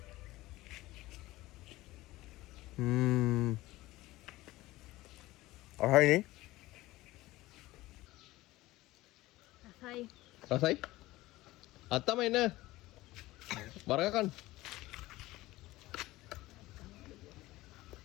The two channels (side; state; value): right; quieter; 18.3 dB